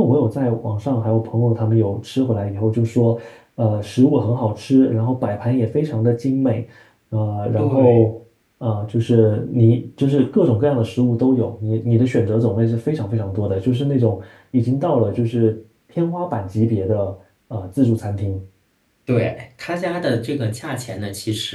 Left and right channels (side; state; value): both; identical; correlation 1.00